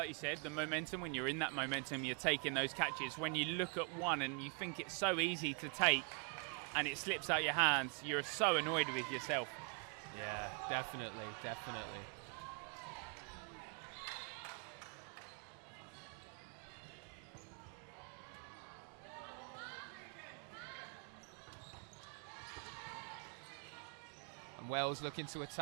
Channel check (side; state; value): left; quieter; 35.0 dB